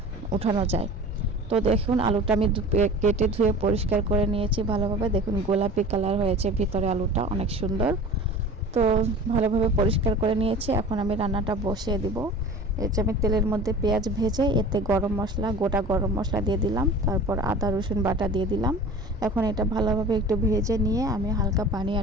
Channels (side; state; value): both; normal; correlation 0.39